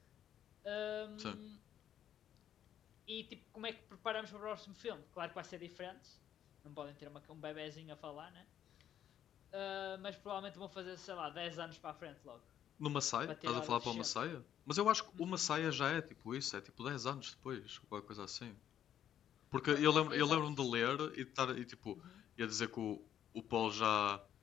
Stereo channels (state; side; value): quieter; right; 10.3 dB